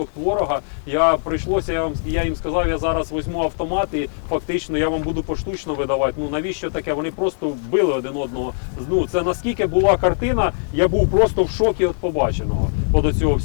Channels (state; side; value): silent; right; digital silence